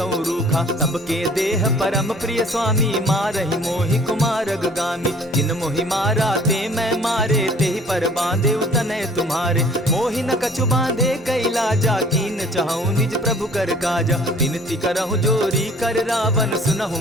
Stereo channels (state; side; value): normal; both; correlation 0.52